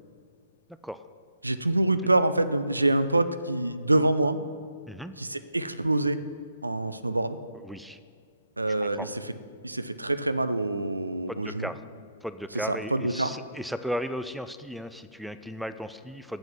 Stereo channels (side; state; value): both; inverted; correlation -0.75